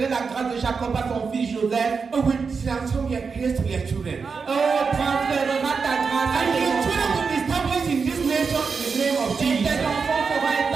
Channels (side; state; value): left; quieter; 5.3 dB